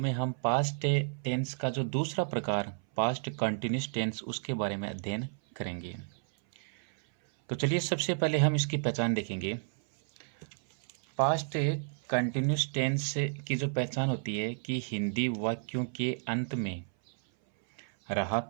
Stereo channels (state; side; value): silent; left; 57 dB below the other